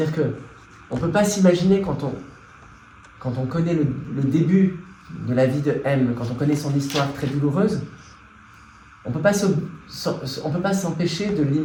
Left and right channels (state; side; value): identical; both; correlation 1.00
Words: que on peut pas s'imaginer quand on connaît le début de la vie de M, quand on connaît son histoire très douloureuse, on peut pas s'empêcher de